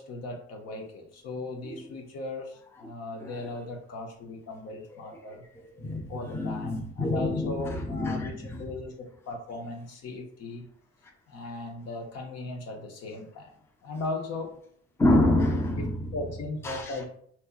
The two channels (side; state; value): both; normal; correlation 0.65